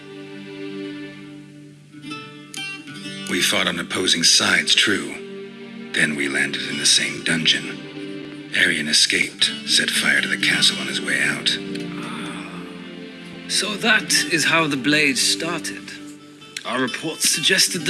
We fought on opposing sides, true. Then we landed in the same dungeon. Arian escaped, set fire to the castle on his way out. So that is how the blade started. Our reports suggested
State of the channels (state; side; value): identical; both; correlation 1.00